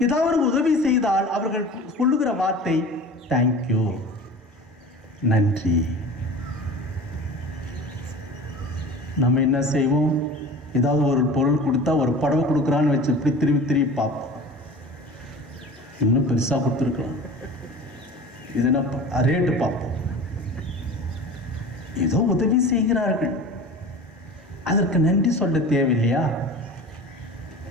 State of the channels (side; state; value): both; normal; correlation 0.38